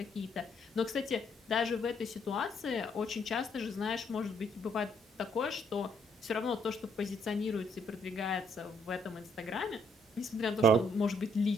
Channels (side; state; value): both; normal; correlation 0.70